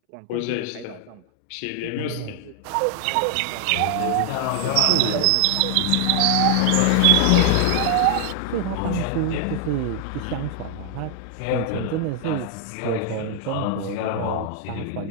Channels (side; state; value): both; different; correlation 0.00